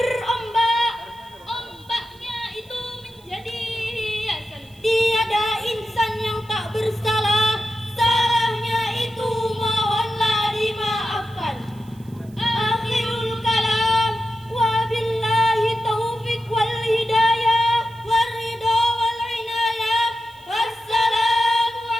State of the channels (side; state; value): right; noise; hiss, 28 dB below the sound